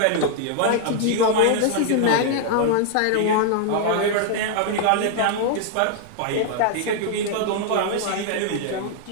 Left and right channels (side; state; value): both; different; correlation 0.00